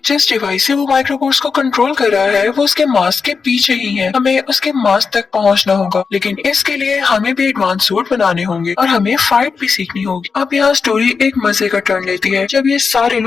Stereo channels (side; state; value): right; quieter; 5.2 dB